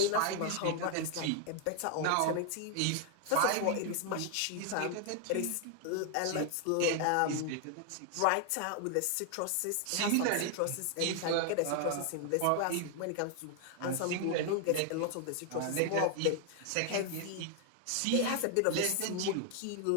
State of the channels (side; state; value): both; different; correlation 0.00